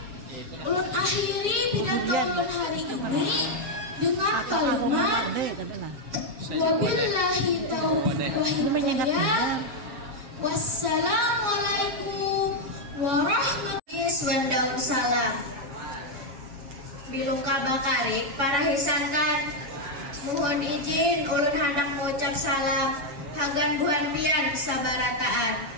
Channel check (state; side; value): late; left; 7.4 ms